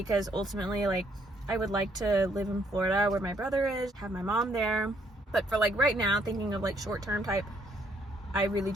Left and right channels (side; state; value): both; normal; correlation 0.69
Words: ultimately, like, I would like to live in Florida where my brother is, have my mom there. But for like right now, thinking of like short-term type, I really